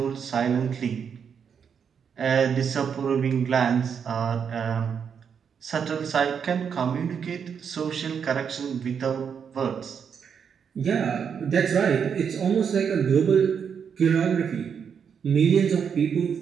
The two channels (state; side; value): quieter; left; 7.1 dB